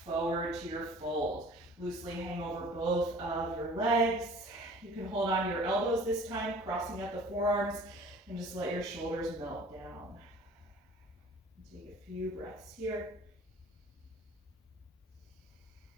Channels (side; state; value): both; normal; correlation 0.47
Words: forward to your fold. Loosely hang over both of your legs. You can hold on to your elbows this time, crossing out the forearms, and just let your shoulders melt down. Take a few breaths here.